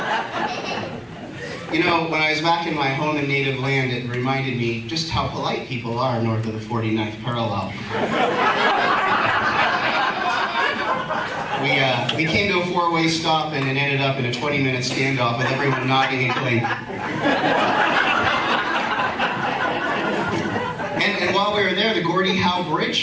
You know, when I was back in my home and native land, it reminded me just how polite people are north of the 49th parallel. We came to a 4-way stop and it ended up in a 20-minute standoff with everyone nodding and going. And while we were there, the Gordie Howe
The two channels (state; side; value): identical; both; correlation 1.00